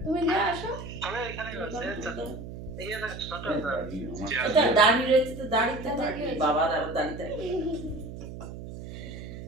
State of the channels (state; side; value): noise; right; hum, 11 dB below the sound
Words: তুমি দিয়ে আসো। এটা দাড়ি রয়েছে তো, দাড়িতে থাকবে বাবার, আর দাড়িতে